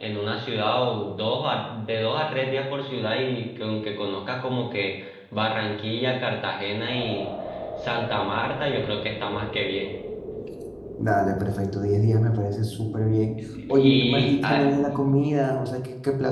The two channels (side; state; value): both; identical; correlation 1.00